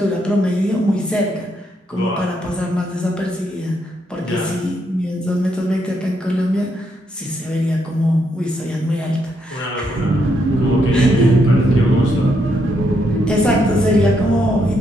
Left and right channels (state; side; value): normal; both; correlation 0.77